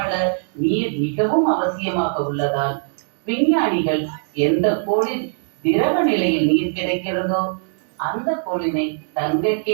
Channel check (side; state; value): left; silent; digital silence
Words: நீர் மிகவும் அவசியமாக உள்ளதால் விஞ்ஞானிகள் எந்த கோளில் திரவ நிலையில் நீர் கிடைக்கிறதோ அந்த கோளினை